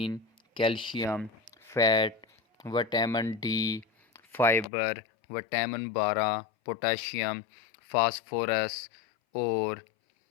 calcium, fat, vitamin D, fibre, vitamin 12، potassium, phosphorus اور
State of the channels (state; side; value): drops out; right; at 4.7 s